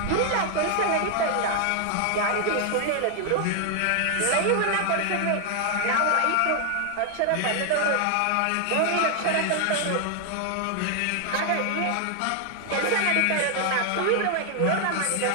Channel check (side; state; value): both; different; correlation 0.00